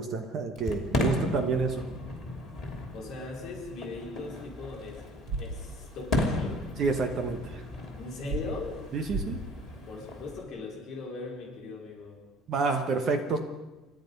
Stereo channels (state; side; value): normal; both; correlation 0.50